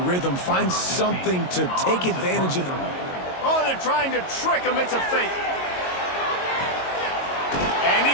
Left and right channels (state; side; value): late; right; 22 ms